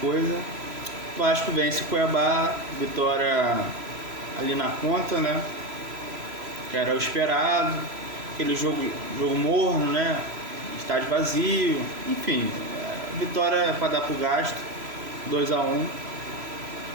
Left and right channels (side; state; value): left; late; 3.0 ms